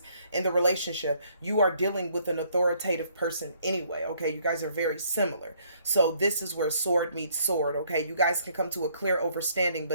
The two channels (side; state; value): both; inverted; correlation -0.65